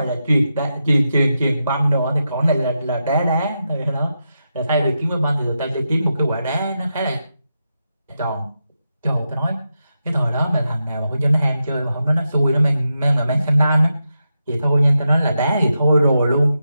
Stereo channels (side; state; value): both; inverted; correlation -0.87